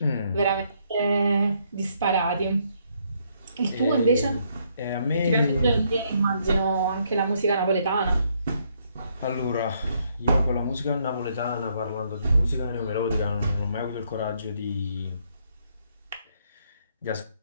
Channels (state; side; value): inverted; both; correlation -0.71